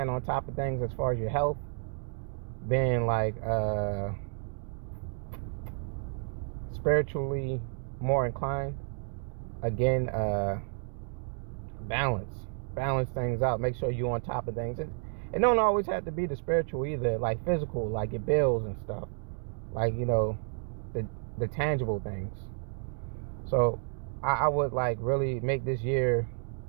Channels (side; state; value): left; silent; 57 dB below the other